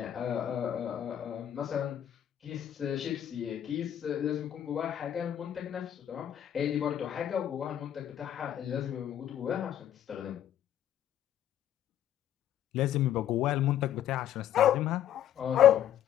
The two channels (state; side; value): quieter; right; 10.7 dB